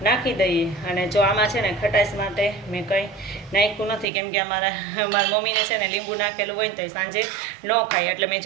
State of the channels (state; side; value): drops out; left; at 4.0 s